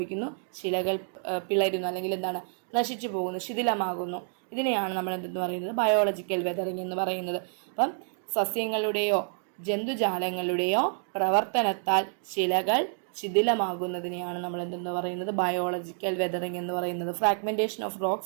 ശിലകൾ പിളരുന്നു, അല്ലെങ്കിൽ എന്താണ്, നശിച്ചു പോകുന്നു, ശിഥിലമാകുന്നു. ഇതിനെയാണ് നമ്മൾ എന്തെന്ന് പറയുന്നത്, ബയോളജിക്കൽ വെതറിങ് എന്ന് പറയുന്നത്. അപ്പം സസ്യങ്ങളുടെയോ ജന്തുജാലങ്ങളുടെയോ പ്രവർത്തനത്താൽ ശിലകൾ ശിഥിലമാകുന്നതിനെയാണ് നമ്മൾ എന്തെന്ന് പറയുന്നത്, ബയോളജിക്കൽ വെതറിങ് എന്ന് പറയുന്നത്. Fragmentation of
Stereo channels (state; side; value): silent; left; 59 dB below the other